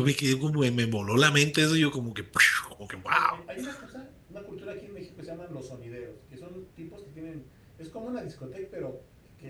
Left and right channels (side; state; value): both; identical; correlation 1.00